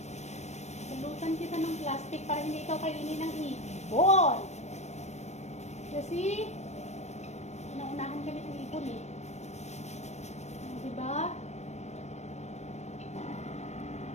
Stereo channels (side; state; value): right; late; 0.33 ms